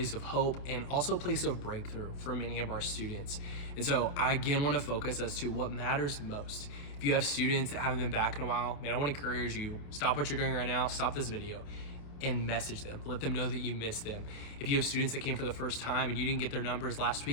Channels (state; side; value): late; right; 28 ms